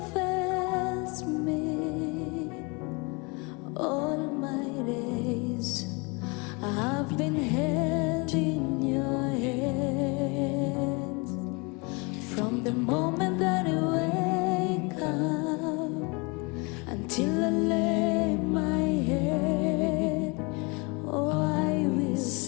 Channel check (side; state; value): right; quieter; 29.5 dB